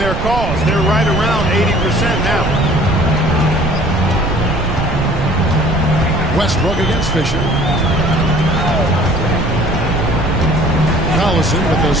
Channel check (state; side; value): noise; right; rumble, 4 dB below the sound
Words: cause. They're right around 80% now. Westbrook against Fisher. Collison with a